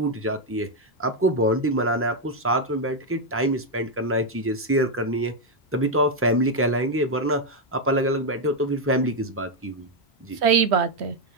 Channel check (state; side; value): normal; both; correlation 0.02